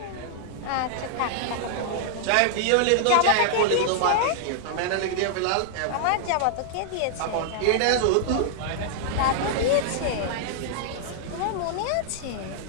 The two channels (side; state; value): both; different; correlation -0.01